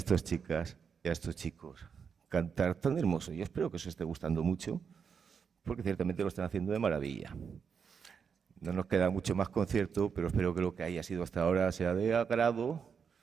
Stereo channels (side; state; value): left; quieter; 6.5 dB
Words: chicas y a estos chicos cantar tan hermoso. Yo espero que os esté gustando mucho, porque ciertamente lo están haciendo de maravilla. No nos queda mucho más concierto, pero espero que lo que haya sido hasta ahora sea de agrado